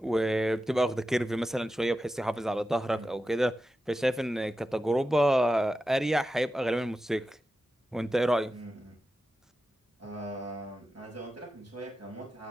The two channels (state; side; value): normal; both; correlation 0.92